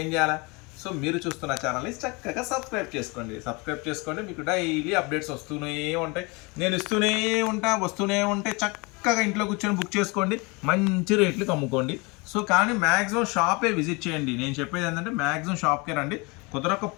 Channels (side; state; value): right; quieter; 27.7 dB